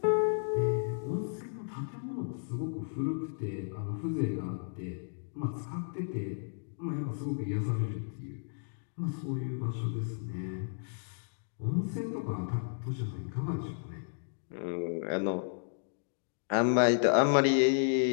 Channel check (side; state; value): right; silent; digital silence